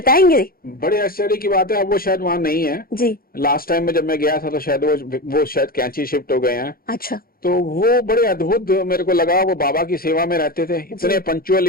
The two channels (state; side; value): late; right; 0.43 ms